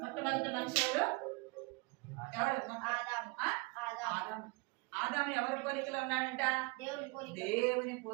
మొట్టమొదటి మనిషి ఎవరు, ఆదాము ఎవరి పోలికలో ఉన్నాడంట, దేవుని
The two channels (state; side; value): quieter; left; 26.6 dB